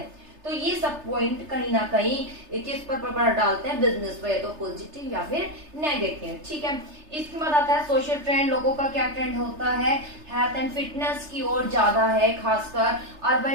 तो ये सब पॉइंट कहीं ना कहीं किस पर प्रभाव डालते हैं, बिजनेस पर, या तो पॉजिटिव या फिर नेगेटिव। ठीक है, इसके बाद आता है सोशल ट्रेंड। लोगों का क्या ट्रेंड होता है, हेल्थ एंड फिटनेस की ओर ज्यादा है, खासकर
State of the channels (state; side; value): late; left; 3.3 ms